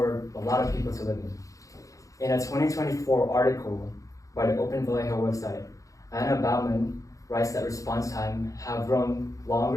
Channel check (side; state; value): right; late; 0.16 ms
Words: a lot of people to live in. In a 2024 article by the Open Vallejo website, Anna Bauman writes that response time have grown